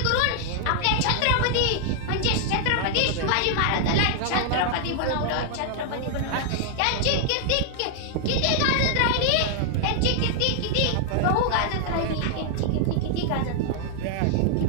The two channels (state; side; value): different; both; correlation -0.01